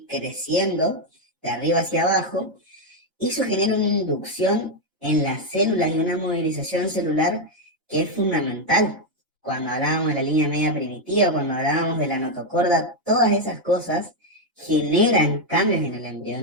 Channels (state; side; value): normal; both; correlation 0.03